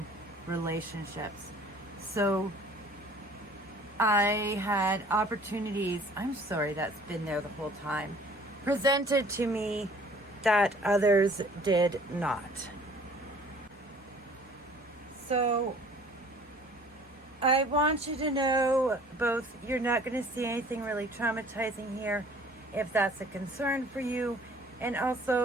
relationships. So I had opportunities, I'm sorry, that's been there the whole time, presented to me that others did not. So I want you to know both, you're not going to see anything really traumatizing here if that's a concern for you, and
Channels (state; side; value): normal; both; correlation 0.52